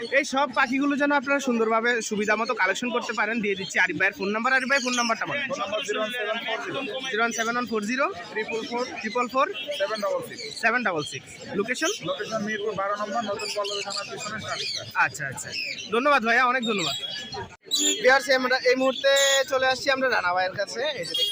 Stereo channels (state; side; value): identical; both; correlation 1.00